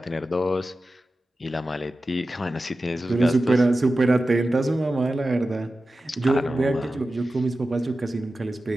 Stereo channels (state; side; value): normal; both; correlation 0.94